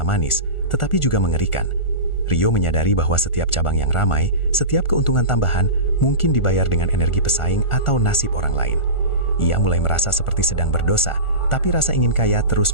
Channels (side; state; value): right; late; 1.4 ms